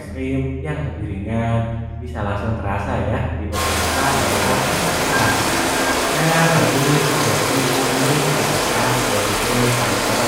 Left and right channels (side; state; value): both; identical; correlation 1.00